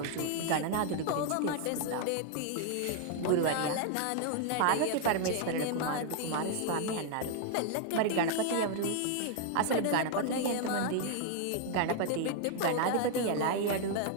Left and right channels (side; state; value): both; different; correlation 0.00